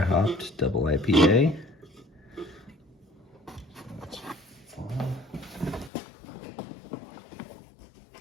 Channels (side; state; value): right; drops out; at 5.9 s